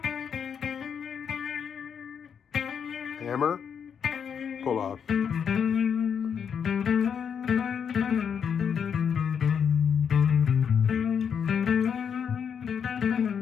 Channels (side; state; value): right; quieter; 7.3 dB